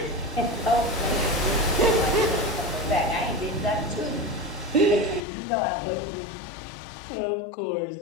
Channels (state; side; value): drops out; right; at 5.2 s